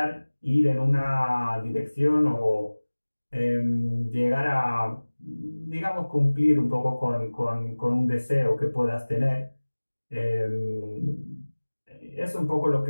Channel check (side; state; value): both; inverted; correlation -1.00